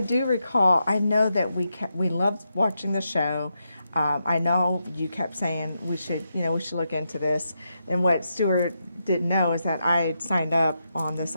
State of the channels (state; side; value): inverted; both; correlation -0.84